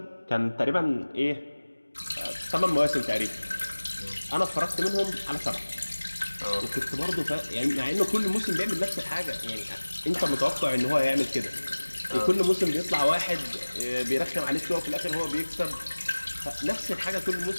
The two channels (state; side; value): inverted; both; correlation -1.00